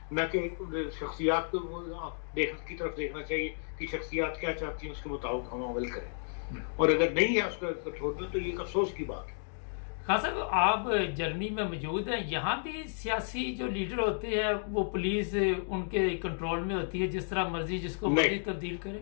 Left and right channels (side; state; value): right; silent; digital silence